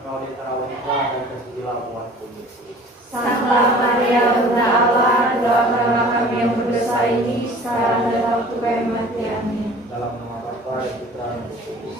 kau di antara wanita dan terpujilah buatku Yesus. Santa Maria Bunda Allah, doakanlah kami yang berdosa ini sekarang dan waktu kematian. Amin. Dalam nama Bapa dan Putra dan Roh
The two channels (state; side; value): normal; both; correlation 0.47